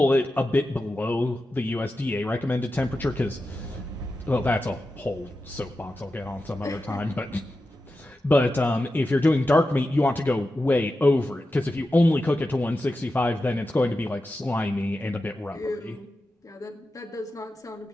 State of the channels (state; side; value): normal; both; correlation 0.91